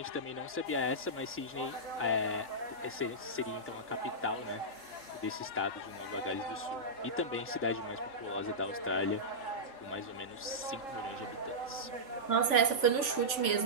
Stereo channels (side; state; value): right; late; 3.5 ms